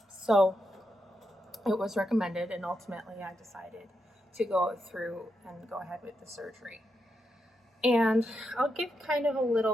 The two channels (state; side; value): normal; both; correlation 0.84